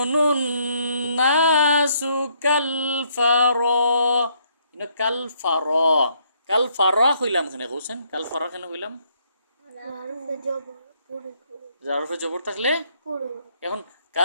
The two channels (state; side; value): inverted; both; correlation -0.69